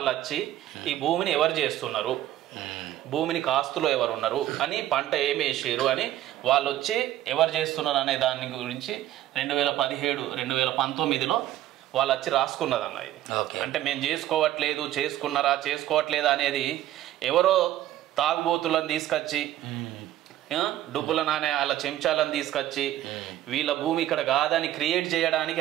వచ్చి ఈ భూమిని ఎవరు చేస్తున్నారు, భూమిని కాస్తులో ఎవరు ఉన్నారు అని, పంట ఏమి వేసారు అని వాళ్ళు వచ్చి ఎవరు చేస్తున్నారు అనే దాని గురించి 2017-2019లో వాళ్ళు వచ్చి రాసుకున్నదన్న ఇది. అంటే మేము చేసుకోవట్లేదా అనేది ఎవరో తాగుబోతులను తీసుకొచ్చి డబ్బుల నానే వాళ్ళ చెంచాలను తీసుకొచ్చి వీళ్ళ భూమి ఇక్కడ కాదని క్రియేట్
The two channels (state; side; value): quieter; left; 13.4 dB